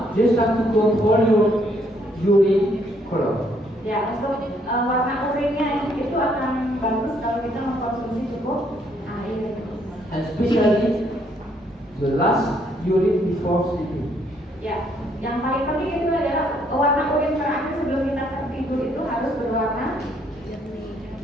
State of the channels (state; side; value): normal; both; correlation 0.69